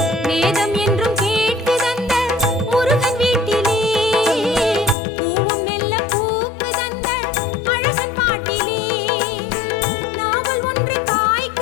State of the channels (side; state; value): right; drops out; at 5.0 s